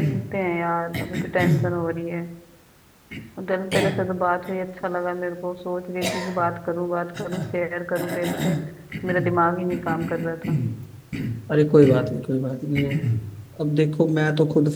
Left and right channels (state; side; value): identical; both; correlation 1.00